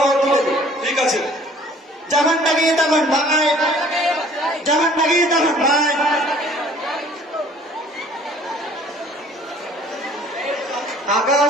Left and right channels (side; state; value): both; normal; correlation 0.54